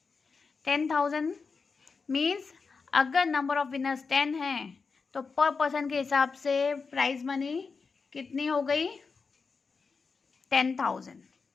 10,000 मीन्स अगर नंबर ऑफ विनर्स 10 हैं तो पर पर्सन के हिसाब से प्राइज मनी कितनी हो गई 10,000।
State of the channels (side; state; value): right; quieter; 4.8 dB